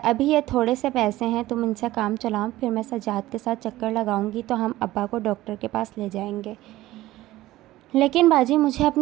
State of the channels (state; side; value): quieter; left; 16.4 dB